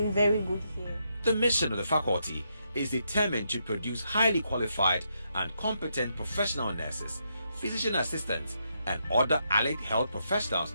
very good here. The mission of the faculty is determined to produce highly qualified and competent professional nurses, physician assistants, and other allied health professionals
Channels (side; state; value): both; inverted; correlation -0.80